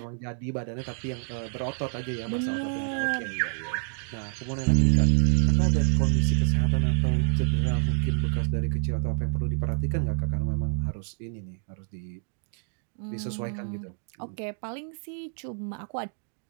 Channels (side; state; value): left; silent; digital silence